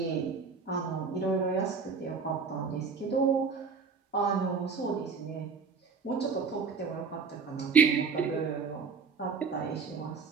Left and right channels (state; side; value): quieter; left; 5.2 dB